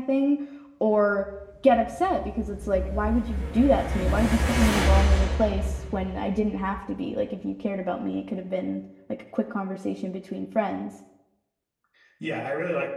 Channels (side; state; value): both; identical; correlation 1.00